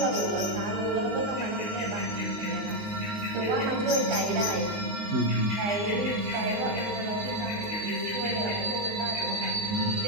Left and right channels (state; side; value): late; left; 19 ms